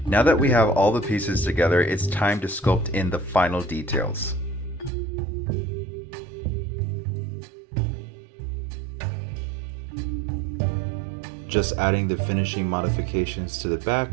Now that we have all the pieces together, it's time to sculpt in the final details. Just adding the finishing modifications to the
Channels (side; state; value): left; drops out; at 4.9 s